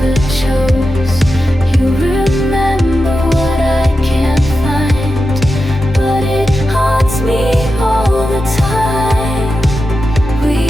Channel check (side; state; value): both; normal; correlation 0.90